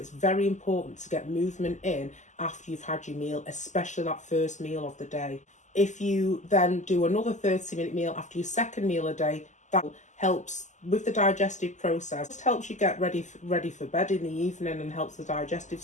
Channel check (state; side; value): late; right; 0.34 ms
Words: very important to get movement in after you've had your meal, especially that first meal of the day. If you then do another 30-minute meal after your second meal a day, that helps with the digestive process. It just helps you get ready for bed in the evening and helps the digestive